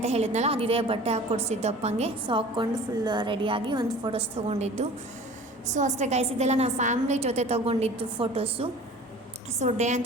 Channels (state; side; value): normal; both; correlation 0.43